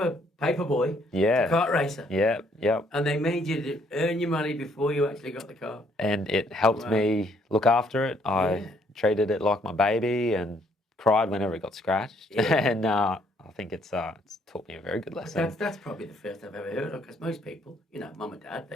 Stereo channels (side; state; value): both; normal; correlation 0.67